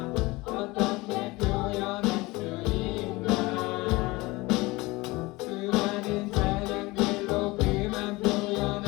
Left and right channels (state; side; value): quieter; right; 22.2 dB